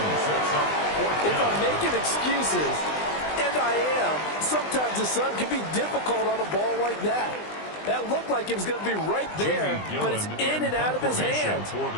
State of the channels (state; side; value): late; right; 20 ms